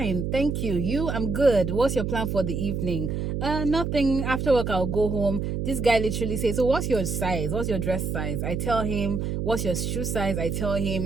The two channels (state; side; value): noise; right; hum, 2 dB below the sound